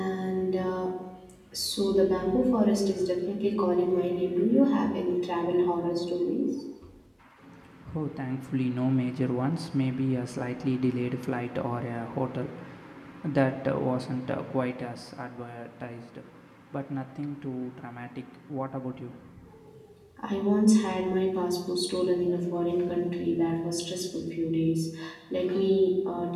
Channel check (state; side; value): identical; both; correlation 1.00